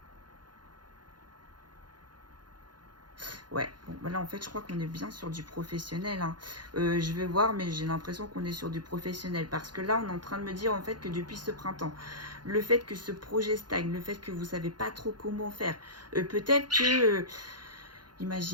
Ouais, bon, bah là en fait je crois qu'on est bien sur du professionnel. Hein. Je vais voir, mais j'ai l'impression qu'on est sur du professionnel. Parce que là on est en train de me dire en fait que depuis ce printemps, le fait que ce projet stagne, le fait que vous ne savez pas trop comment faire, peut-être que,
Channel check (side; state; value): left; late; 0.71 ms